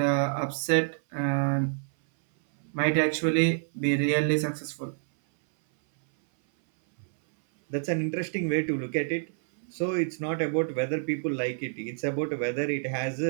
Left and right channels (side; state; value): left; silent; 59 dB below the other